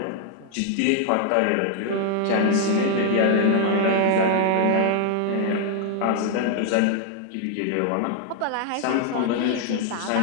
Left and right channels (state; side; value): different; both; correlation 0.00